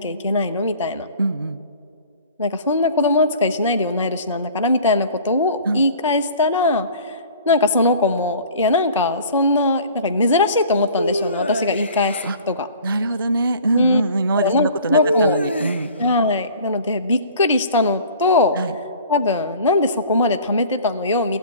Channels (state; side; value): inverted; both; correlation -0.47